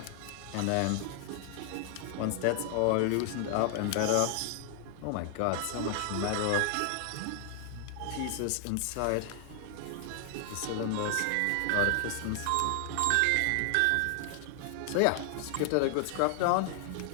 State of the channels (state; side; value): different; both; correlation 0.00